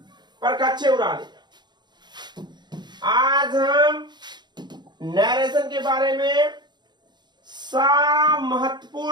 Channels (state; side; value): late; left; 0.21 ms